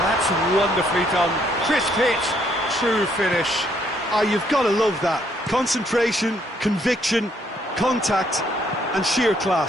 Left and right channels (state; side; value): normal; both; correlation 0.69